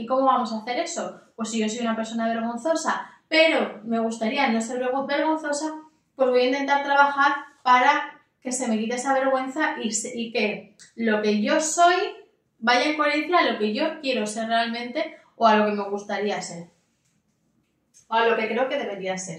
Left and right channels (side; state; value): both; identical; correlation 1.00